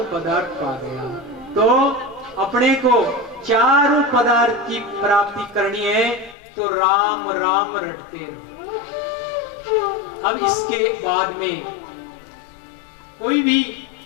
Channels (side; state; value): right; drops out; at 6.4 s